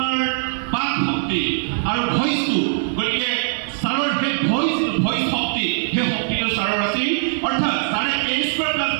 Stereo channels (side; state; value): left; silent; digital silence